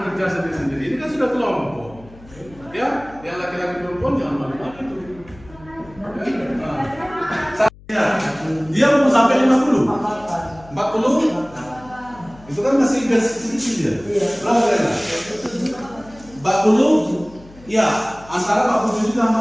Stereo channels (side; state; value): left; noise; hum, 22 dB below the sound